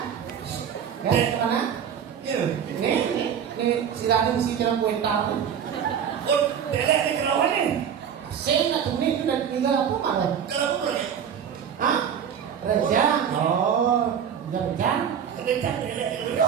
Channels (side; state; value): left; quieter; 8.2 dB